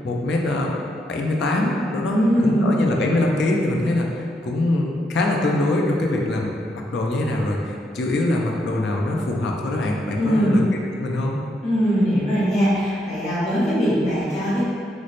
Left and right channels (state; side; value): normal; both; correlation 0.78